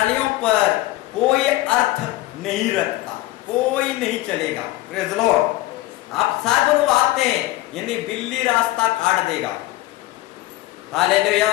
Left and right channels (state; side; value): quieter; right; 17.3 dB